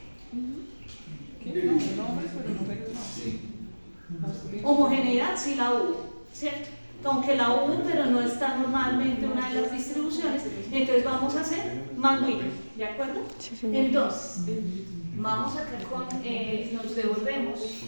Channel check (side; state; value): both; inverted; correlation -1.00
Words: Homogeneidad sí la hubo, ¿cierto? Aunque la hubo, pero no está normalmente una de las distribuciones, entonces vamos a hacer Mann-Whitney, ¿de acuerdo? Entonces, vamos acá con, nos devolvemos,